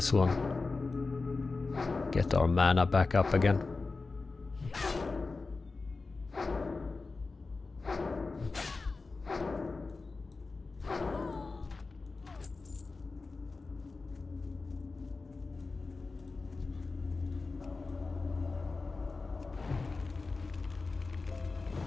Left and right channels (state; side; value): quieter; right; 3.9 dB